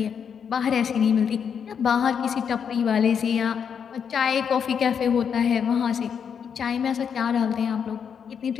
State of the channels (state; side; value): quieter; right; 7.2 dB